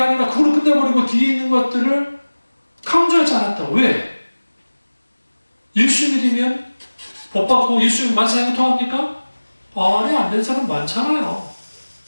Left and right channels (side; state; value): both; inverted; correlation -1.00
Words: 그걸로 끝내버리고 뒤에 있는 것들을 강조하지 않았다. 왜? 예수 믿으면 복 받고 예수 만사형을 통합니까? 아니, 안 된 사람 많잖아요.